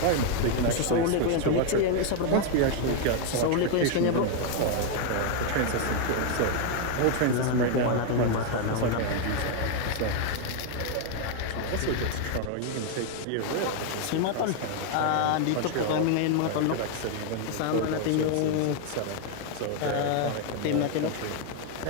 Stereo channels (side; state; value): both; different; correlation 0.00